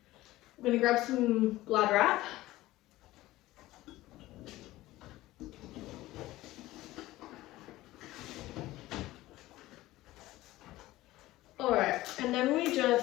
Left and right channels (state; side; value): quieter; right; 17.0 dB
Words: grab some Glad wrap. Alright, and then we